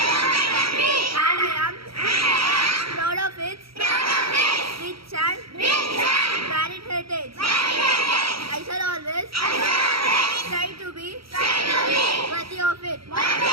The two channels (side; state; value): left; late; 0.75 ms